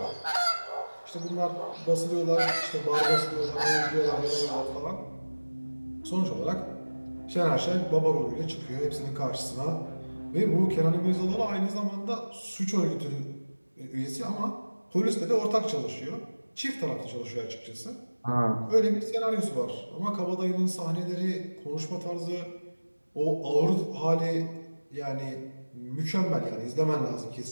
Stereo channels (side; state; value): both; inverted; correlation -1.00